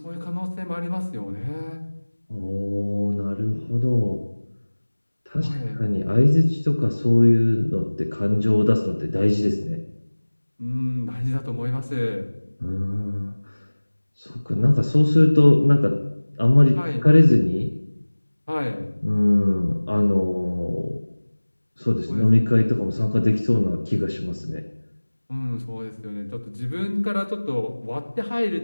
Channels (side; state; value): both; inverted; correlation -1.00